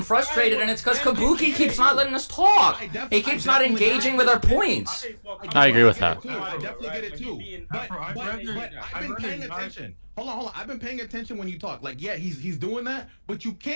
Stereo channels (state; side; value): inverted; both; correlation -1.00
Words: frustrated, and it's because Kabuki keeps not letting us talk. He keeps not engaging with our points. I agree with that. I definitely get it too. But I've been paying attention. Hold on. I've been paying attention when you talk. Like, yeah, he's doing that, but you